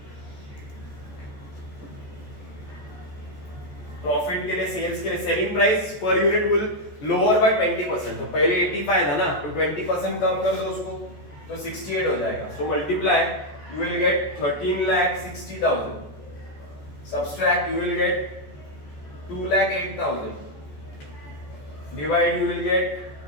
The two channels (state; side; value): late; right; 14 ms